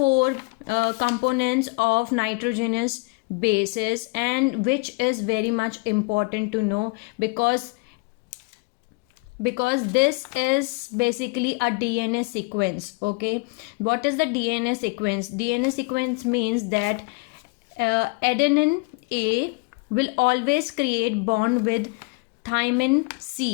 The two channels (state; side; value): quieter; right; 27.6 dB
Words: components of nitrogenous bases, and which is very much important to know, because this is basically a DNA sequence. Okay, what is the DNA sequence? DNA sequence means that adenine A will always create bond with thymine